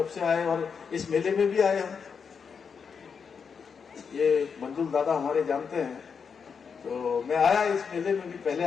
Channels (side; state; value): right; quieter; 6.1 dB